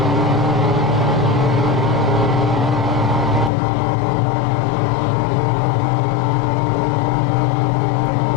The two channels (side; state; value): right; drops out; at 3.5 s